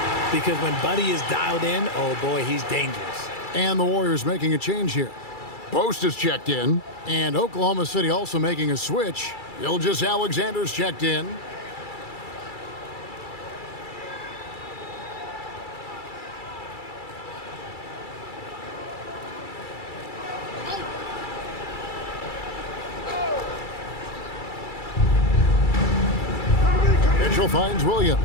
Because when Buddy is dialed in, oh boy, he's dangerous. And the Warriors making a change here. Post is checked in, and Oklahoma City also making a switch. Gilgeous-Alexander's checked in. Mitchell finds Williams.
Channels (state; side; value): late; right; 2.3 ms